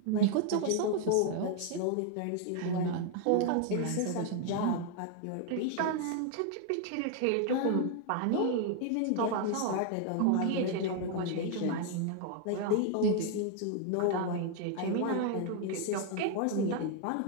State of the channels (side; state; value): both; different; correlation 0.00